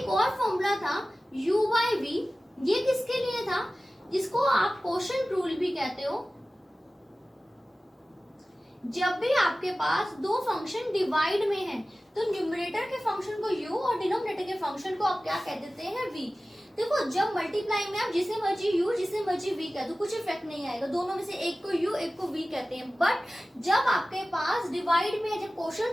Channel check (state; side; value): normal; both; correlation 0.96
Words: और फॉर्मूला था u/v, ये किसके लिए था, जिसको आप क्वोशंट रूल भी कहते हो। जब भी आपके पास दो फंक्शन डिवाइड में हैं तो न्यूमरेटर के फंक्शन को u और डिनोमिनेटर के फंक्शन को आप क्या कह देते हैं, v। देखो जब मल्टीप्लाई में आप जिसे मर्जी u जिसे मर्जी v कह दो, कुछ इफेक्ट नहीं आएगा, दोनों में से एक को u एक को v कहते हैं। बट जब आपके पास डिवाइड में जब